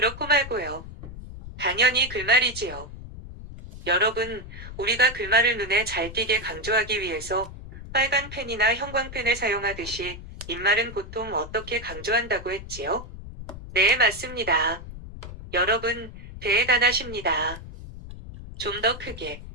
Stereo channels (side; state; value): left; noise; rumble, 13 dB below the sound